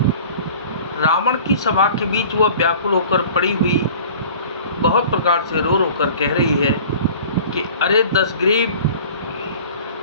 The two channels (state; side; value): inverted; both; correlation -0.44